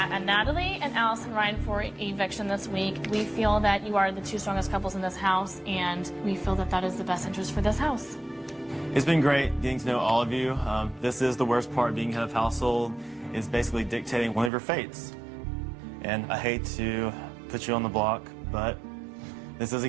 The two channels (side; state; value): left; drops out; at 14.5 s